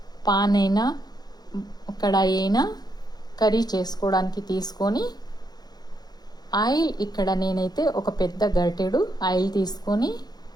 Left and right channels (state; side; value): late; right; 0.19 ms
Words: పాన్ అయినా కడాయి అయినా కర్రీ చేసుకోవడానికి తీసుకొని ఆయిల్, ఇక్కడ నేనైతే ఒక పెద్ద గరిటెడు ఆయిల్ తీసుకొని